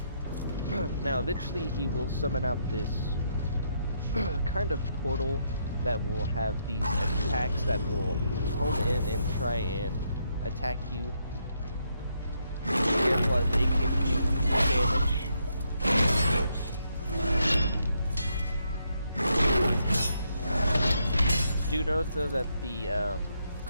Now eventually he will summon out this kind of portal that will have these attacks that will home in and try and attack you. Be careful as they can do damage. Do note though that the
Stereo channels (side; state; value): both; inverted; correlation -0.77